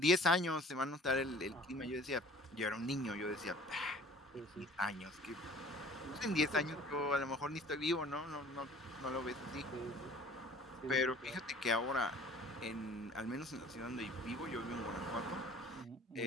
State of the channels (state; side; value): normal; both; correlation 0.49